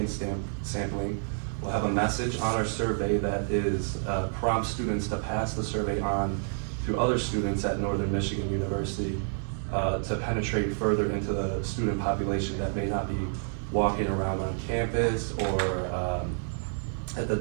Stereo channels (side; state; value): left; silent; 59 dB below the other